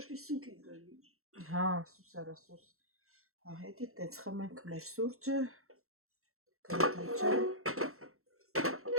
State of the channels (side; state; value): left; late; 0.63 ms